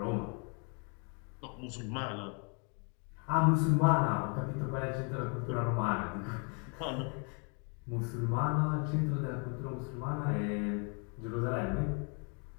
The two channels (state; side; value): quieter; right; 37.5 dB